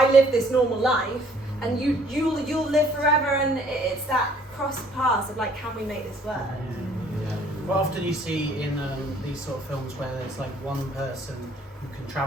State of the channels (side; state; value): both; normal; correlation 0.59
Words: live this normal life, and you'll live forever, and it's that cross paths of like, can we make this work? Quite often you see in these sort of films where there's like one person who can